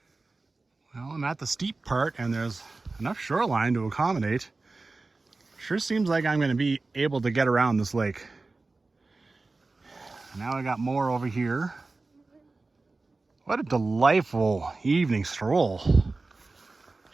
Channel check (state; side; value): quieter; left; 3.5 dB